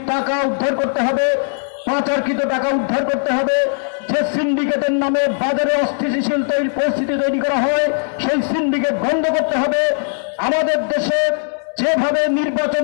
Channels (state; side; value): silent; right; digital silence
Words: টাকা উদ্ধার করতে হবে, পাচারকৃত টাকা উদ্ধার করতে হবে, সিন্ডিকেটের নামে বাজারে অস্থিতিশীল পরিস্থিতি তৈরি করা হয়, সেই সিন্ডিকেট বন্ধ করতে হবে। আমাদের দেশে যেভাবে